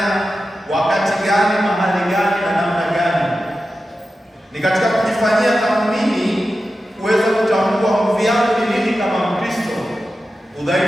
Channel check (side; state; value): both; normal; correlation 0.92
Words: Wakati gani? Mahali gani? na namna gani? Ni katika kujifanyia tathmini kuweza kutambua nguvu yangu ni nini kama Mkristo,